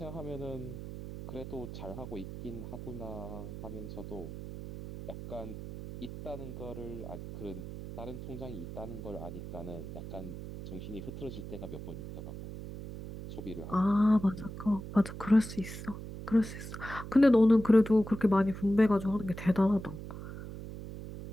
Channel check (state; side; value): noise; right; hum, 10 dB below the sound